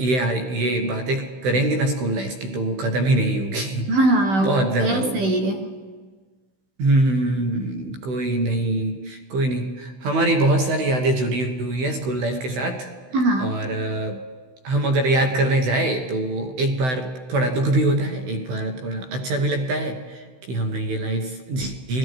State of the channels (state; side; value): late; left; 16 ms